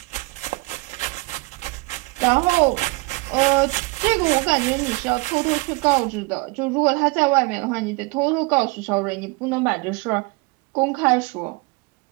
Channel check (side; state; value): left; quieter; 26.0 dB